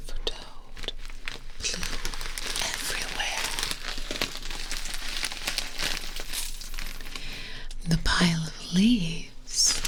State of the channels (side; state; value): both; identical; correlation 1.00